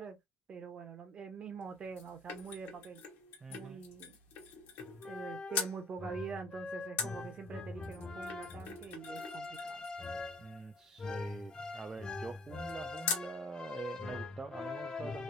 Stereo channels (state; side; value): normal; both; correlation 0.56